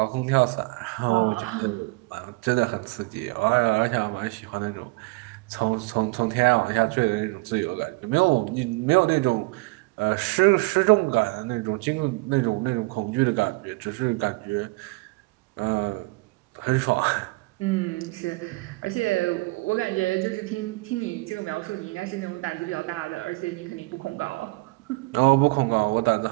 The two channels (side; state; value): left; quieter; 25.5 dB